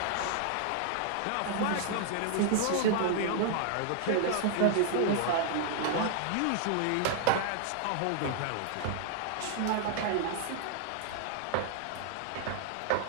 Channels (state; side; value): different; both; correlation 0.00